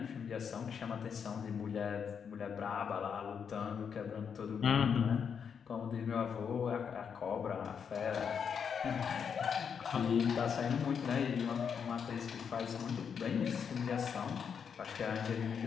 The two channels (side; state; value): right; quieter; 7.0 dB